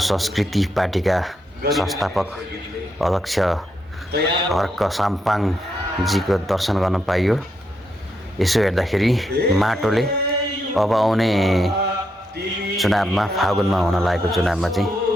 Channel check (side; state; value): both; normal; correlation 0.80